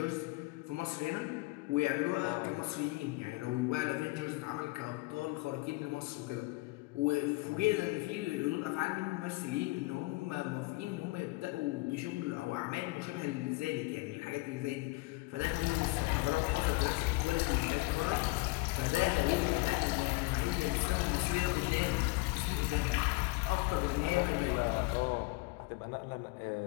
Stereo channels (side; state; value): right; quieter; 23.2 dB